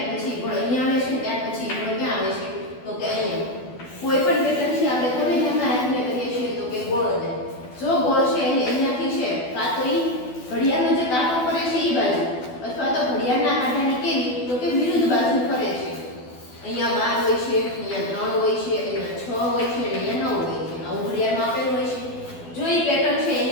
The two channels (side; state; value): right; late; 12 ms